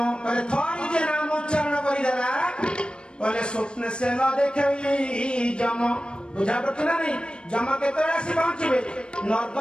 कहले थोड़ी जे नाम उच्चारण करी देला कहले स्वप्न से न देखई जम बुझा पड़ती ना नहीं जम केते आसी पहुंचबे नरक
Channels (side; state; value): right; late; 0.054 ms